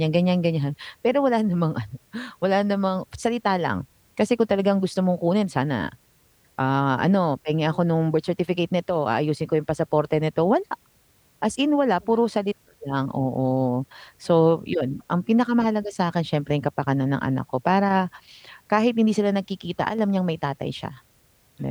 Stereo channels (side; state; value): both; identical; correlation 1.00